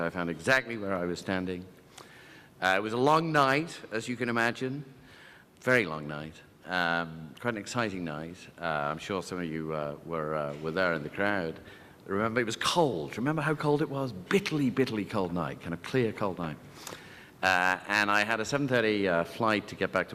I found exactly where I was standing. It was a long night, as you can imagine, very long night, quite an exciting night. I'm sure some of you were there in the crowd. Remember, it was cold. Remember how cold it was? Bitterly, bitterly cold night, kind of clear, cold night. And I had a 7:30 flight to get back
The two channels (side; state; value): both; identical; correlation 1.00